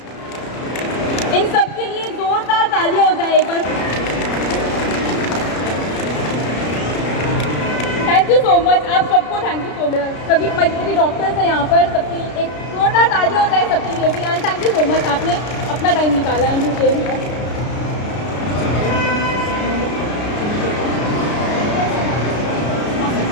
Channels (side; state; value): right; late; 33 ms